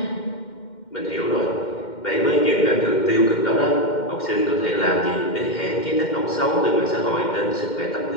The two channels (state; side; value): late; right; 2.1 ms